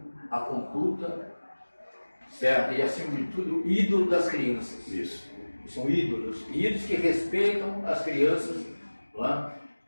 a conduta, certo? E acima de tudo, ídolo das crianças. Isso. São ídolos que respeitam as crianças. Não é?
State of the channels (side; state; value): both; inverted; correlation -1.00